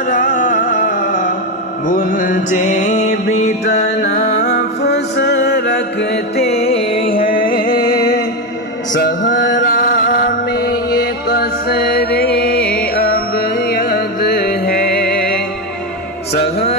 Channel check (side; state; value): both; normal; correlation 0.11